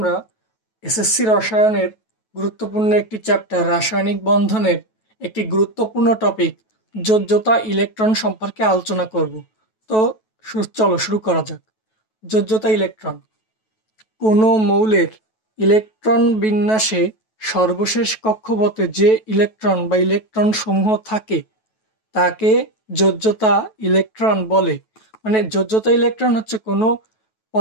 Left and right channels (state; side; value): late; right; 9.2 ms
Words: এসএসসি রসায়নের গুরুত্বপূর্ণ একটি চ্যাপ্টার রাসায়নিক বন্ধনের একটি গুরুত্বপূর্ণ টপিক যোজ্যতা ইলেকট্রন সম্পর্কে আলোচনা করব। তো চলো শুরু করা যাক। যোজ্যতা ইলেকট্রন কোনো মৌলের ইলেকট্রন বিন্যাসে সর্বশেষ কক্ষপথে যে ইলেকট্রন বা ইলেকট্রন সমূহ থাকে তাকে যোজ্যতা ইলেকট্রন বলে। মানে যোজ্যতা ইলেকট্রন হচ্ছে কোনো